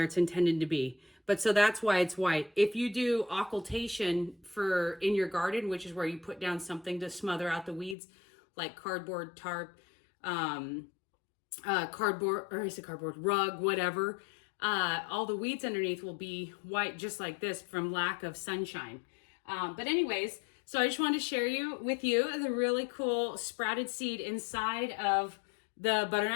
it's intended to be. But so that's why it's white. If you do occultation in your garden, which is where you put down something to smother out the weeds, like cardboard, tarp, rug, whatever, all the weeds underneath will be white just like this from lack of sunshine. But anyways, so I just wanted to share with you the really cool sprouted seed inside of the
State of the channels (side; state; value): right; drops out; at 8.0 s